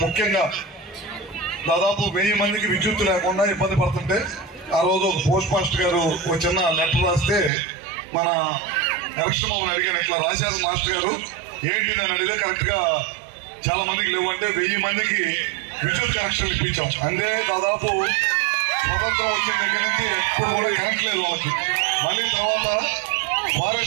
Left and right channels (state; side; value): drops out; left; at 7.5 s